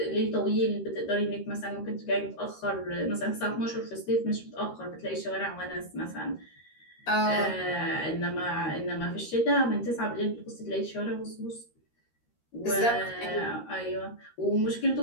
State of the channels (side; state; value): right; late; 13 ms